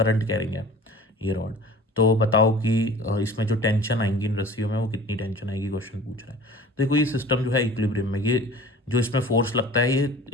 कैरिंग है ये रॉड। तो बताओ कि इसमें जो टेंशन आएंगी इन रस्सियों में वो कितनी टेंशन आएगी, क्वेश्चन पूछ रहा है। देखो ये सिस्टम जो है इक्विलिब्रियम में, ये जो इसमें फोर्स लगता है ये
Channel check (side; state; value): both; normal; correlation 0.43